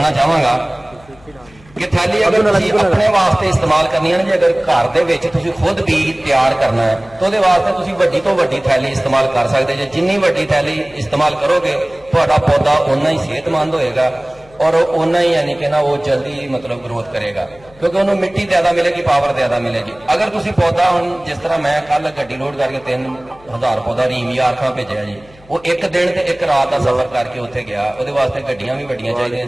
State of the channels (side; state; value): left; noise; hum, 26 dB below the sound